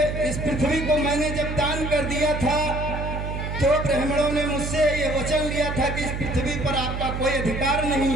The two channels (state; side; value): noise; right; hum, 4 dB below the sound